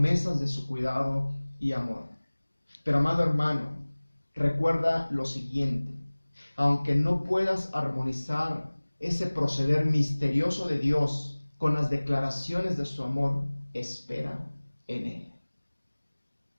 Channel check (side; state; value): both; inverted; correlation -1.00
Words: de su cuidado y amor. Pero amado hermano, recuerda lo siguiente: aunque no puedas armonizar ese proceder misterioso de Dios con las declaraciones de su amor, espera en Él.